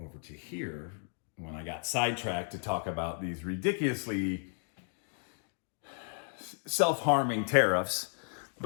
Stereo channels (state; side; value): silent; right; 55 dB below the other